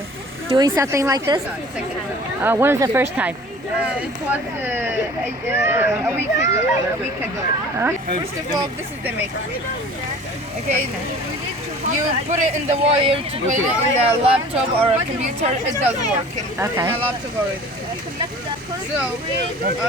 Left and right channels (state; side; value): normal; both; correlation 0.45